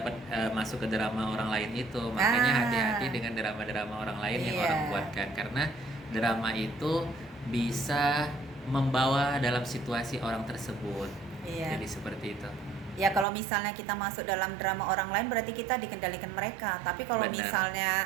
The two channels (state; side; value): drops out; left; at 13.2 s